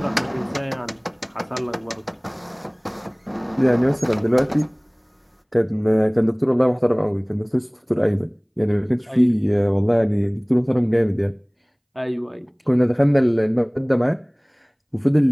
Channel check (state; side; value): identical; both; correlation 1.00